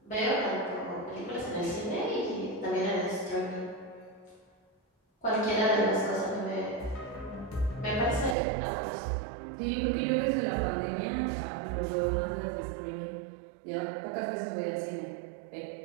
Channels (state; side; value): drops out; left; at 8.3 s